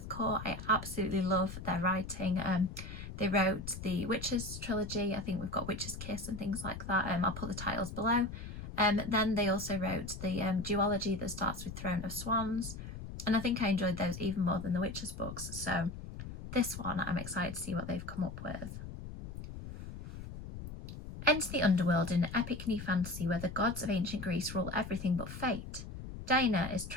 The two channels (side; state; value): left; noise; rumble, 10 dB below the sound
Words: Kaur. I absolutely love their writing. They wrote the Witches trilogy. I think we've got Witch's Kiss and things like that. I'll put the titles below. Then they also wrote the duology that starts with Throne of Swans, and I think I enjoyed those even more than the Witches books. So this one, I'm excited to see what they've come up with. Enter the underworld in an epic new fantasy where the gods of ancient Greece rule everything but fate. Diana is